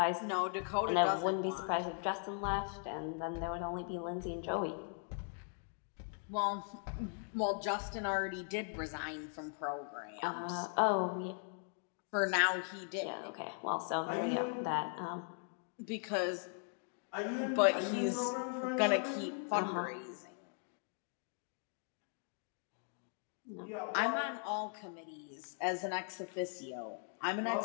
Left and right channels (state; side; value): silent; right; 52 dB below the other